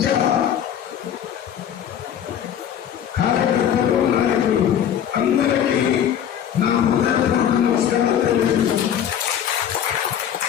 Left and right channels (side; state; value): right; quieter; 9.5 dB